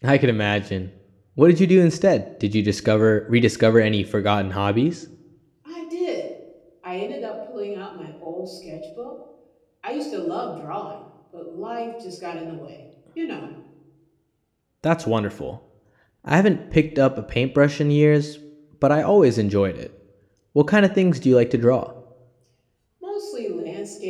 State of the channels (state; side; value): identical; both; correlation 1.00